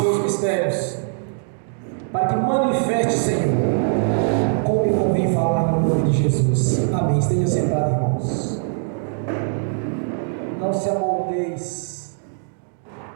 mistérios, para que manifeste, Senhor, como me convém falar no nome de Jesus. Amém. Esteja sentado, irmãos. Não se amoldeis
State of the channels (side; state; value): left; silent; digital silence